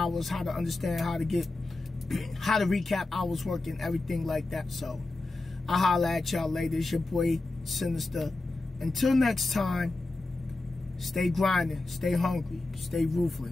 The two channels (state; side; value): quieter; right; 3.0 dB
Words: how to understand how to recap hours work and everything like that. So I'll holler at y'all later. It's your boy Sinister. Until next time, Stay grinding, stay hungry, stay